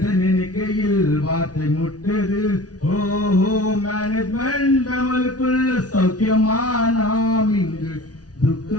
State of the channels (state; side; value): late; right; 0.68 ms